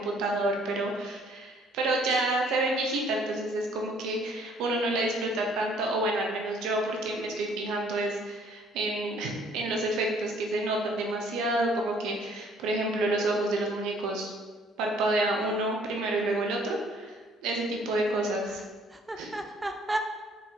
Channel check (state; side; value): normal; both; correlation 0.60